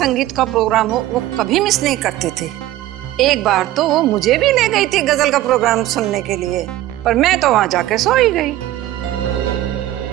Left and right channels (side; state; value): left; quieter; 14.8 dB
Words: का प्रोग्राम हो, वो कभी मिस नहीं करती थी। एक बार तो वो मुझे भी ले गई थी गजल का प्रोग्राम सुनने के लिए, पर मैं तो वहां जाके सो ही गई।